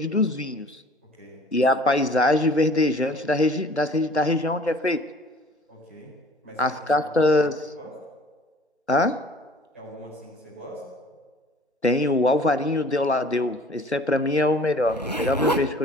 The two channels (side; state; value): both; normal; correlation 0.50